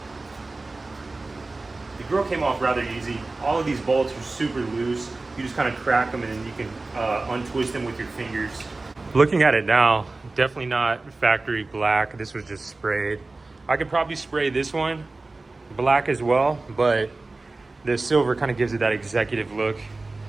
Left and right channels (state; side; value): quieter; left; 3.3 dB